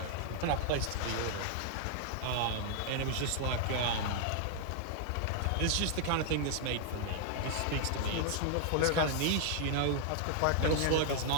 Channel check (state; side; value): different; both; correlation -0.01